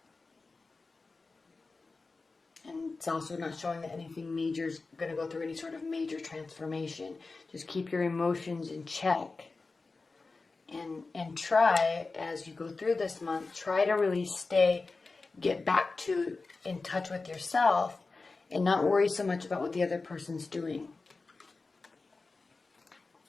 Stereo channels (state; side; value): quieter; right; 3.8 dB